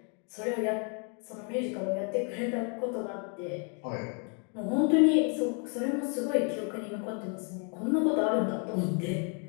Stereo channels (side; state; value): right; quieter; 38.6 dB